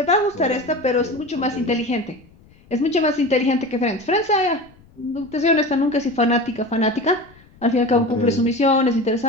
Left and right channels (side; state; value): left; noise; rumble, 27 dB below the sound